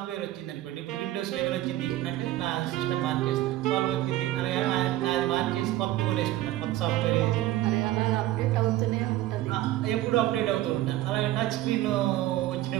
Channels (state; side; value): quieter; left; 15.0 dB